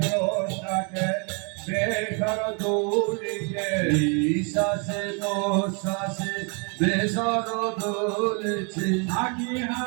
বেসর দৌড়িকে শ্বাসে প্রশ্বাসে বেসর দৌড়েছে হাঁকি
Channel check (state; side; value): quieter; left; 35.6 dB